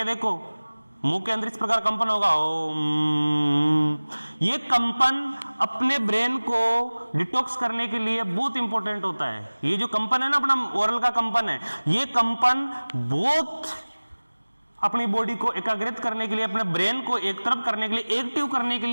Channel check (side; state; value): both; inverted; correlation -1.00